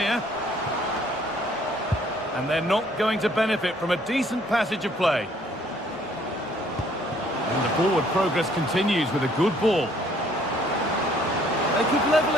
And they're not going to benefit from a decent passage of play. And the forward progress continues with a good ball. They could level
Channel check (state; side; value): normal; both; correlation 0.62